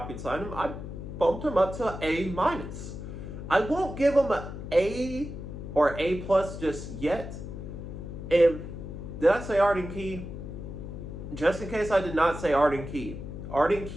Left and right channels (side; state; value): left; noise; hum, 9 dB below the sound